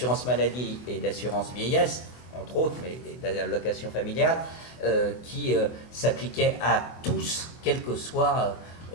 maladie et d'assurance vieillesse, entre autres, mais d'allocation familiale, qui s'appliquait à tous, quelle que soit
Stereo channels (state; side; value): late; right; 24 ms